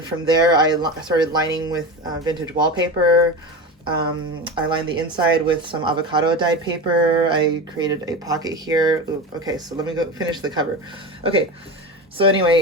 from there I started lining with vintage wallpaper. I lined the inside with some avocado dyed paper. I created a pocket here. Ooh, okay, so let me go finish the cover. Okay, so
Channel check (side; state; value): both; normal; correlation 0.25